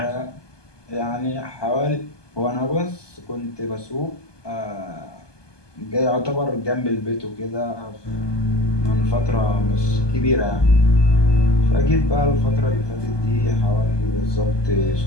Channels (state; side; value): late; right; 1.2 ms